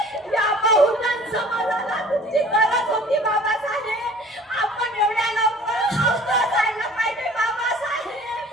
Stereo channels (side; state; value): both; normal; correlation 0.49